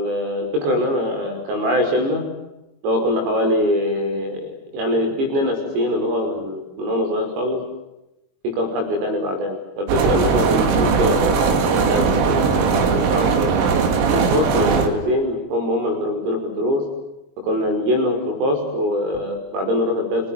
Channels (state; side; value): late; left; 22 ms